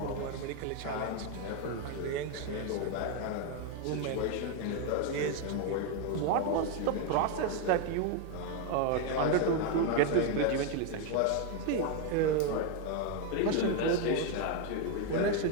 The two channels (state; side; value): different; both; correlation 0.01